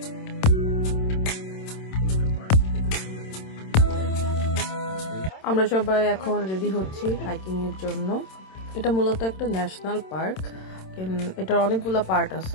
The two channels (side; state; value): right; late; 27 ms